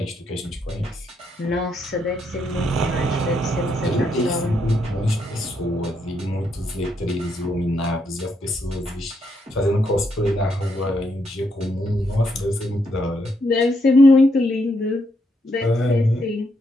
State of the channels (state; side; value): normal; both; correlation 0.77